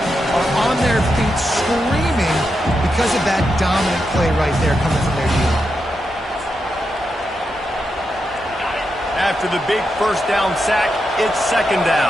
are on their feet screaming because of that dominant play right there coming from their D-line. After the big first down sack, it's 2nd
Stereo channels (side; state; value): both; normal; correlation 0.86